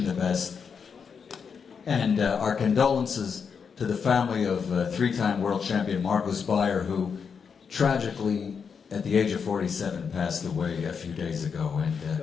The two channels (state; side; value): quieter; right; 6.3 dB